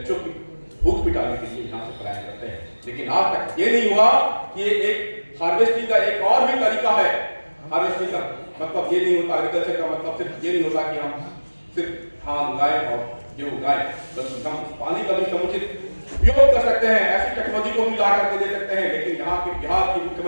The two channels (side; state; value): both; inverted; correlation -1.00